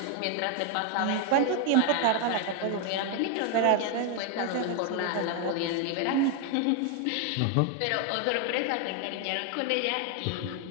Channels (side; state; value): both; different; correlation 0.01